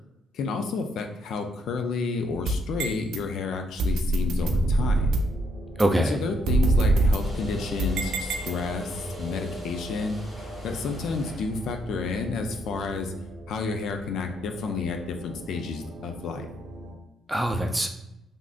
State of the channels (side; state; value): both; normal; correlation 0.73